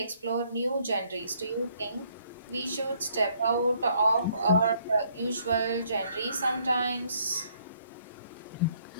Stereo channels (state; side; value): inverted; both; correlation -0.66